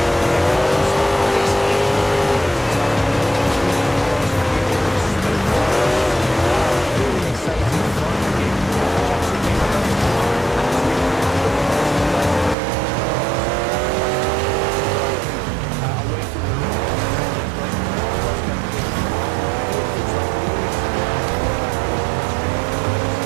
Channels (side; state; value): left; drops out; at 12.6 s